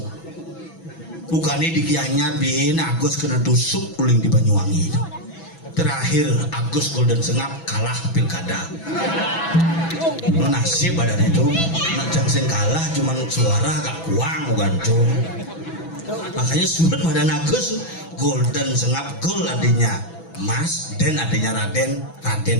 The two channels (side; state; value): right; late; 6.0 ms